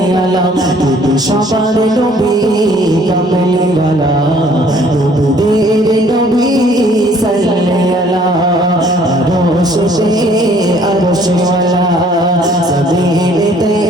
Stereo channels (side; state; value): both; normal; correlation 0.59